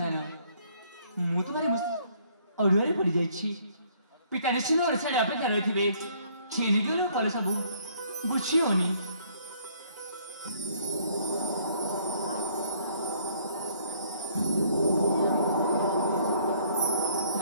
मु तुम्हारे अड़ुआ पड़ जा पिता निश्चित ओडाड़े अपेक्षा रही थे छीनिक फल सब बुझी होनी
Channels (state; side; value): inverted; both; correlation -0.63